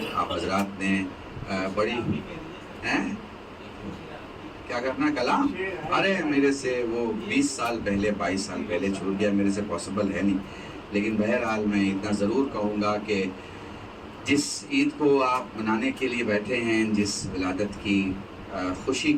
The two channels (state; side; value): identical; both; correlation 1.00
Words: آپ حضرات نے بڑی کیا کرنا کلام، ارے میرے سے وہ 20 سال پہلے 22 سال پہلے چھوٹ گیا، میرے سے پاسبل ہے نہیں. لیکن بہرحال میں اتنا ضرور کہوں گا کہ جس عید کو آپ منانے کے لیے بیٹھے ہیں، جس ولادت کی خوشی